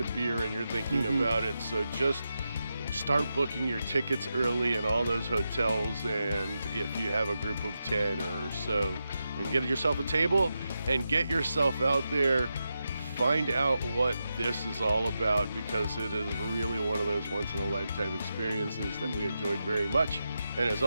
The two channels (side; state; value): both; inverted; correlation -0.88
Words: beer and you're thinking about it. So just start booking your tickets early in all those hotels, and if you have a group of 10 or so, and get yourself a table and get yourself out there. Find out what this is all about, because it is really one of those once-in-a-lifetime experiences that we enjoyed very much. And as